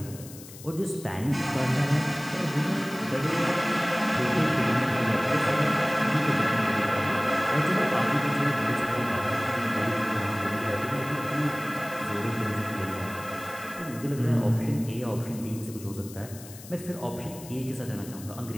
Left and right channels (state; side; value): noise; left; hiss, 17 dB below the sound